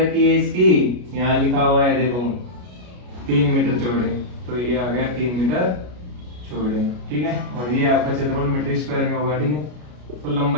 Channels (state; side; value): late; left; 33 ms